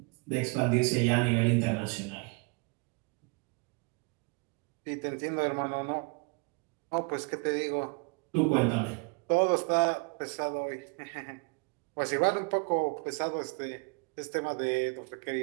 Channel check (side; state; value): left; quieter; 31.8 dB